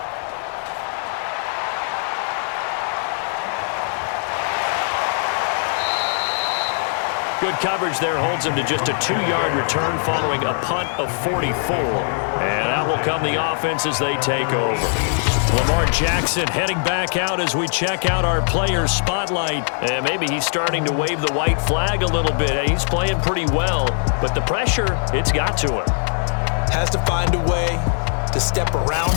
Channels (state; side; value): silent; right; digital silence